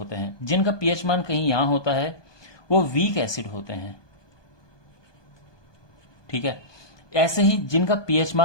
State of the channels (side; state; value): right; late; 1.2 ms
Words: हैं। जिनका पीएच मान कहीं यहां होता है वो वीक एसिड होते हैं, ठीक है। ऐसे ही जिनका पीएच